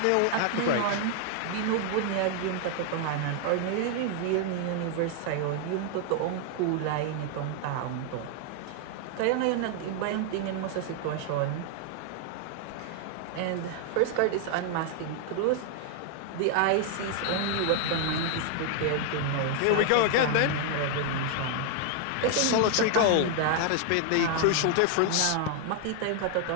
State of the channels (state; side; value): different; both; correlation 0.00